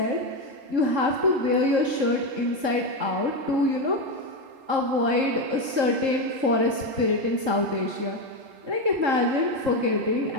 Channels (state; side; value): late; left; 3.7 ms